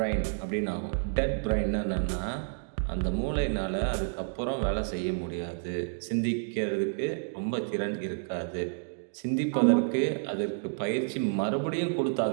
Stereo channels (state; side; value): silent; left; digital silence